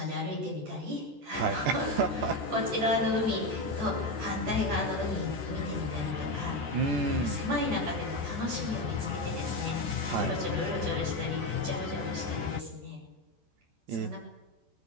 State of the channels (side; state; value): left; late; 14 ms